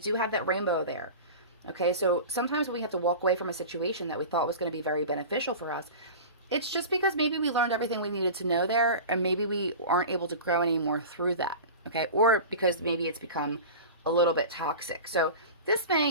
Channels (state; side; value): inverted; both; correlation -0.32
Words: have that rainbow there. Okay, so sometimes when we have to walk away from a situation that we thought was going to be very beneficial for us, it's just because maybe we learned everything we needed to know there, and maybe we aren't able to grow anymore through that, okay? Or because maybe it's become a little bit toxic. So This